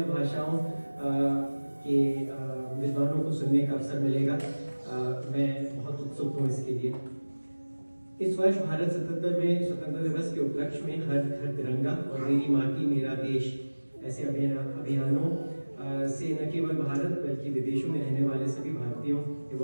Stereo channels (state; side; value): inverted; both; correlation -1.00